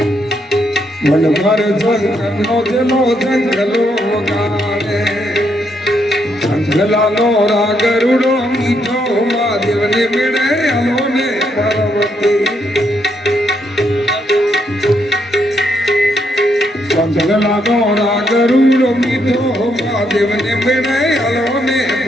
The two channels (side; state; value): both; normal; correlation 0.77